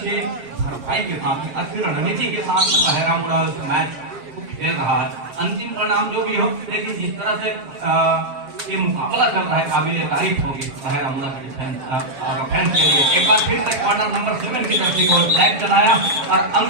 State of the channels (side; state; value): left; late; 7.4 ms